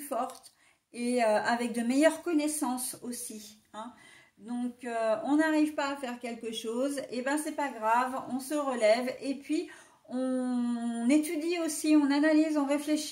forte et avec de meilleures connaissances aussi, hein. Donc, on n'arrive pas à faire quelque chose, et ben c'est pas grave, on se relève et puis on étudie aussi, on analyse, on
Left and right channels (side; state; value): both; identical; correlation 1.00